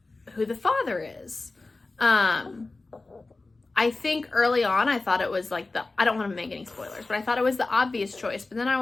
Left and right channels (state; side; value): quieter; right; 3.4 dB